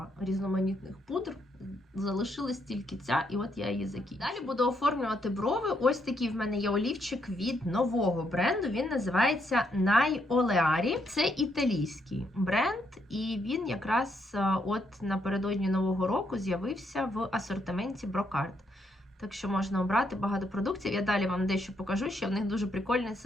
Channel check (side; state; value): both; normal; correlation 0.76